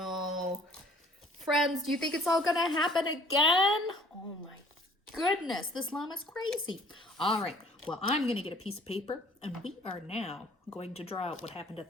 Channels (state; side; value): normal; both; correlation 0.54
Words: Friends, do you think it's all gonna happen again? Oh my goodness, this llama's crazy. All right, well, I'm gonna get a piece of paper, and we are now going to draw out what happened